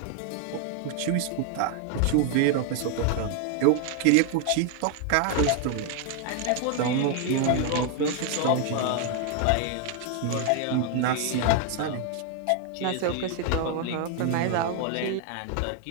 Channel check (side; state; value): both; different; correlation 0.00